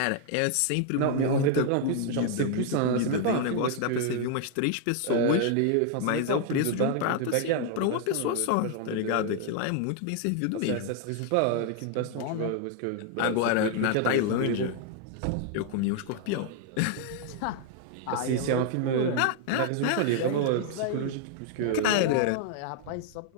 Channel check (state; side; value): different; both; correlation 0.00